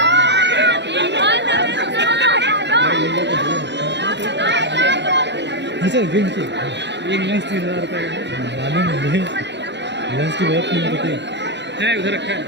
गिन के एक लेंस 3000 रुपये मालूम मुझे, लेंस की बहुत कीमत होती है। उधर रखा है।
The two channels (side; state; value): left; late; 0.51 ms